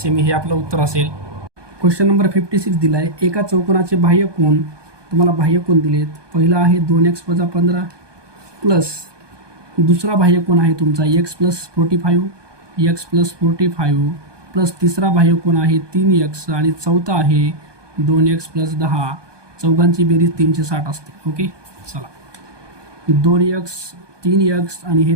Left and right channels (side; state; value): left; late; 1.2 ms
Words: हे आपलं उत्तर असेल. क्वेश्चन नंबर 56 दिला आहे, एका चौकोनाचे बाह्य कोन, तुम्हाला बाह्य कोन दिलेत. पहिला आहे 2x - 15 प्लस दुसरा बाह्य कोन आहे तुमचा x + 45, x + 45 प्लस तिसरा बाह्य कोन आहे 3x आणि चौथा आहे 2x + 10. चौघांची बेरीज 360 असते. ओके, चला 2x 3x आणि हे